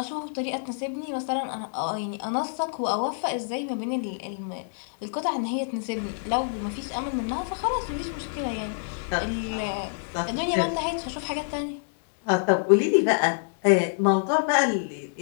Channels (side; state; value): right; silent; digital silence